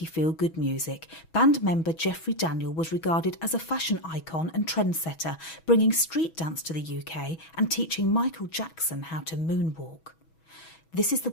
feel-good music, band member Jeffrey Daniel was regarded as a fashion icon and trendsetter, bringing street dance to the UK and teaching Michael Jackson how to moonwalk. This is the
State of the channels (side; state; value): right; late; 6.1 ms